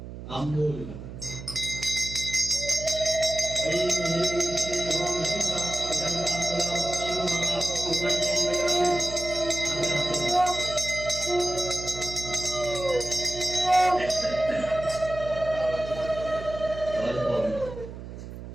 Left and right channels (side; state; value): right; noise; hum, 11 dB below the sound